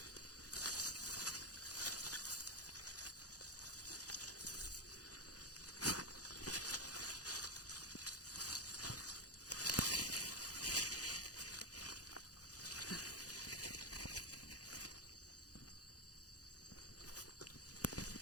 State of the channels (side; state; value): right; late; 0.67 ms